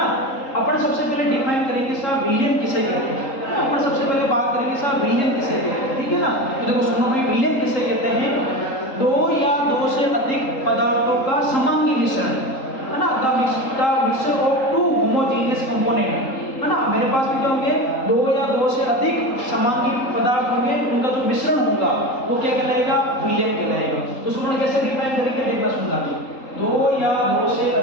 अपन सबसे पहले डिफाइन करेंगे साहब विलियन किसे कहते हैं ना, अपन सबसे पहले बात करेंगे साहब विलियन किसे कहते हैं। ठीक है ना, तो देखो सुनो भाई, विलियन किसे कहते हैं? दो या दो से अधिक पदार्थों का समांगी मिश्रण है ना, the mixture of two homogeneous component है ना। मेरे पास में क्या होंगे? दो या दो से अधिक समांगी पदार्थ होंगे, उनका जो मिश्रण होगा वो क्या कहलाएगा? विलियन कहलाएगा। तो सुनो कैसे डिफाइन करेंगे, देखना सुनना जी। दो या दो से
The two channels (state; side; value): late; right; 3.8 ms